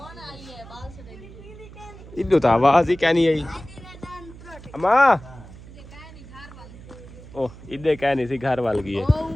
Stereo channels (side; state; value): right; noise; hum, 17 dB below the sound